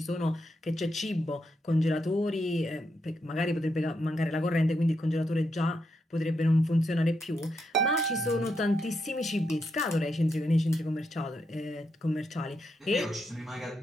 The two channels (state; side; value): normal; both; correlation 0.82